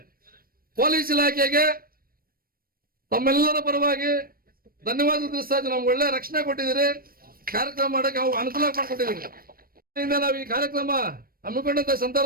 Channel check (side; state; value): left; late; 0.43 ms